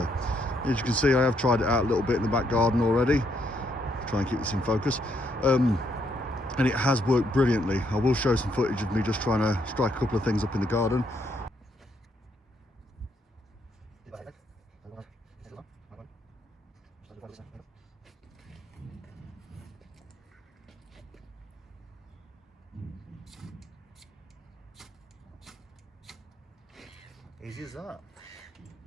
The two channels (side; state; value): both; normal; correlation 0.74